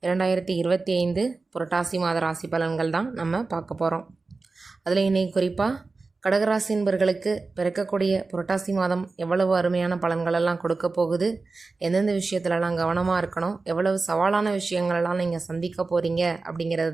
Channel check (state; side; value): quieter; left; 3.8 dB